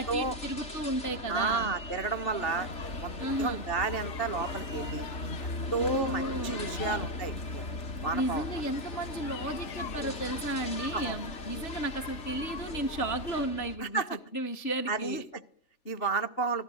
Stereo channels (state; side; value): late; right; 3.4 ms